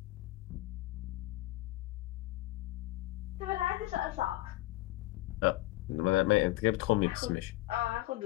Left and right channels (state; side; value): quieter; right; 18.0 dB